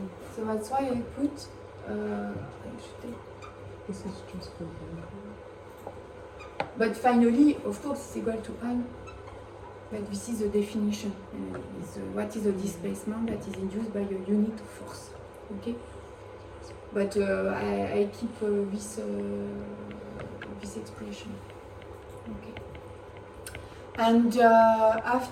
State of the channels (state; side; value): identical; both; correlation 1.00